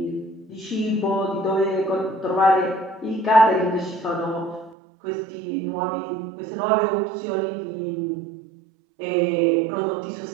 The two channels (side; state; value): left; drops out; at 4.8 s